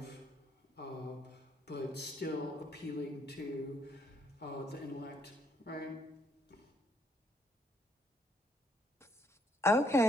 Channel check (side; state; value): both; normal; correlation 0.70